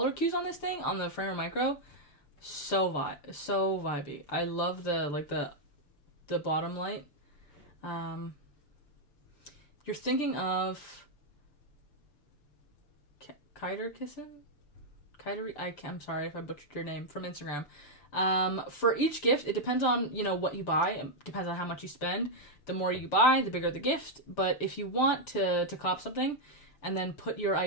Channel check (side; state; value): right; late; 6.8 ms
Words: cues on this thing, on the Framer Micro, so vibey. I love the bottom light. You're thinking of I'm sorry if I butchered your name, from Instagram. For each gift, it depends on, what you buy. It depends on how much you spend. The more you buy, the bigger the gift. But if you want to cop something and then put your